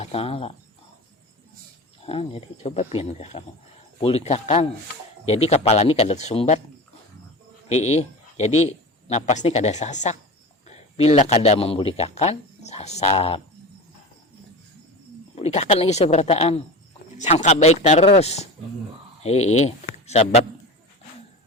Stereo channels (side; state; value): both; normal; correlation 0.30